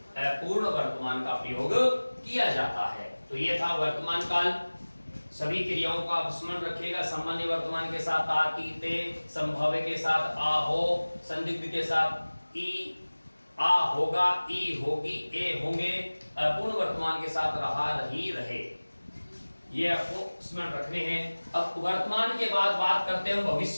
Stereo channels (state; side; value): inverted; both; correlation -1.00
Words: अपूर्ण वर्तमान का प्रयोग किया जाता है। तो ये था वर्तमान काल। सभी क्रियाओं का आप स्मरण रखिएगा। सामान्य वर्तमान के साथ आ, ती, ते, संभाव्य के साथ आ, हो, संदिग्ध के साथ ई, आ होगा, ई होगी, ए होंगे, अपूर्ण वर्तमान के साथ रहा, रही, रहे, ये आपको स्मरण रखने हैं। अब वर्तमान के बाद बात करते हैं